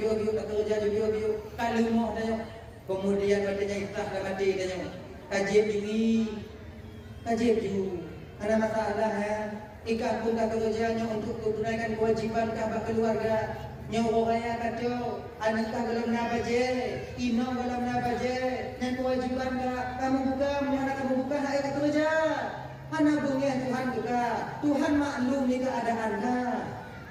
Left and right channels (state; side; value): identical; both; correlation 1.00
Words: bio tak kerja di bio kalau mau tanya kemudian katanya ikhlas dah mati tanya kaji diri ada masalah ikat pun tak kerjanya untuk menunaikan kewajiban kah keluarga nyawa raya kata anak kah belum nak baje inong belum nak baje dan kewajiban kah kamu buka mana kamu buka hak tak kerja. Mana bungnya Tuhan juga. Tuhan maklum ni keadaan dah.